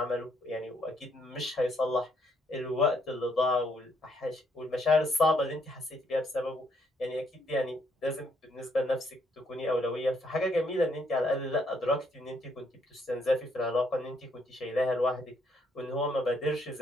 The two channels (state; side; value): normal; both; correlation 0.71